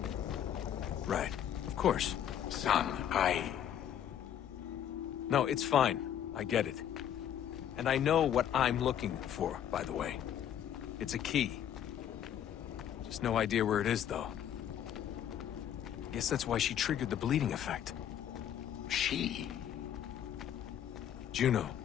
Right. Of course. Son, No, it's fine. I get it. And I know what I'm looking for, by the way. It's a key. Just no idea where it is, though. Guess that's why she triggered the bleeding effect. She? Juno,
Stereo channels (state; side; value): quieter; right; 9.9 dB